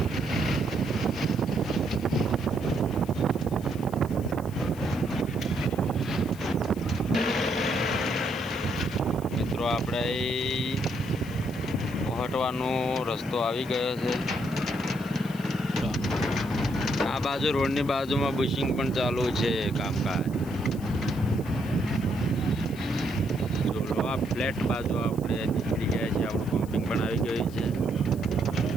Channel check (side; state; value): left; noise; hiss, 21 dB below the sound